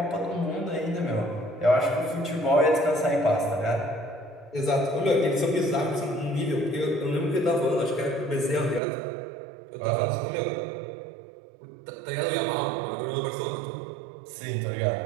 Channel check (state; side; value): drops out; left; at 8.8 s